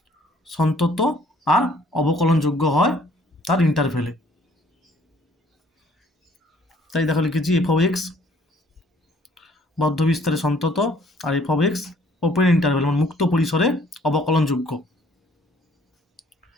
সন্তত আর অবকলনযোগ্য হয় তার ইন্টারভেলে। তাই দেখো লিখেছি f(x) বদ্ধ বিস্তারে সন্তত, আর f(x) ওপেন ইন্টারভেল মানে মুক্ত পরিসরে অবকলনযোগ্য।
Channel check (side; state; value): both; normal; correlation 0.59